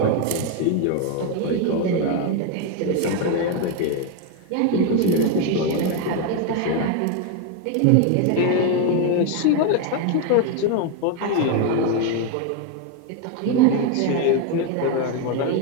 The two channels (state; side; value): different; both; correlation 0.01